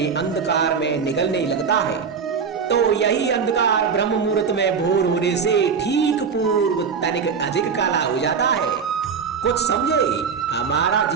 अंधकार में निगलने लगता है, तो यही अंधकार ब्रह्म मुहूर्त में भोर होने से ठीक पूर्व तनिक अधिक काला हो जाता है। कुछ समझे, हमारा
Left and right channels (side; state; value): left; quieter; 6.1 dB